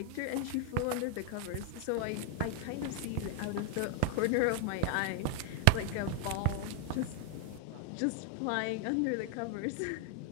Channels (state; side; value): different; both; correlation 0.00